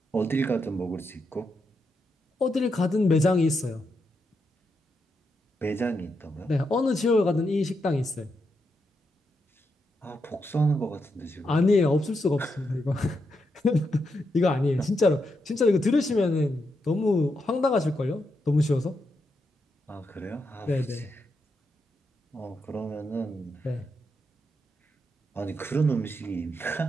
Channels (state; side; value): normal; both; correlation 0.83